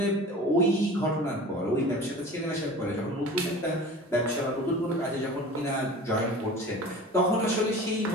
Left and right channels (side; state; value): both; normal; correlation 0.39